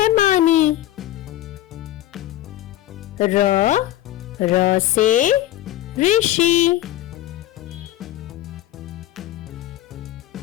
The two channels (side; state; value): right; quieter; 14.1 dB